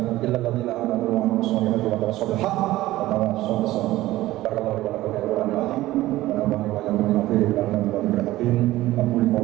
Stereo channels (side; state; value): left; quieter; 16.4 dB